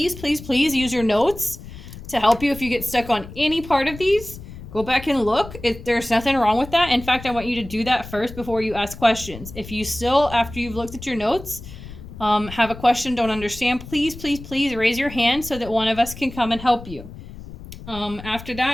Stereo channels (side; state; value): left; noise; rumble, 14 dB below the sound